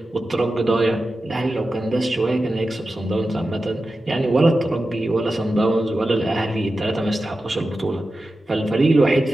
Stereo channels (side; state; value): both; normal; correlation 0.92